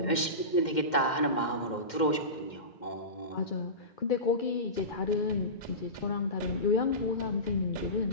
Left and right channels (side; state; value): right; late; 2.1 ms